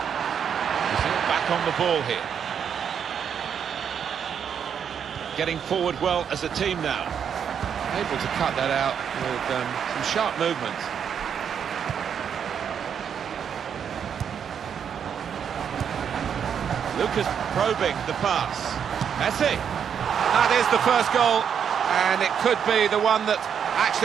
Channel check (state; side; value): quieter; left; 7.8 dB